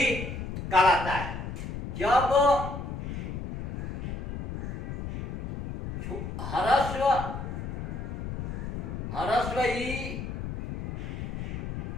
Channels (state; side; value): noise; left; rumble, 6 dB below the sound